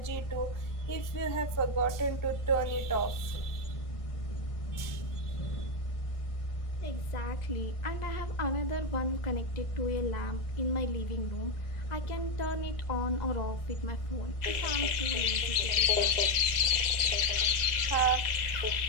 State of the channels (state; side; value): late; right; 1.4 ms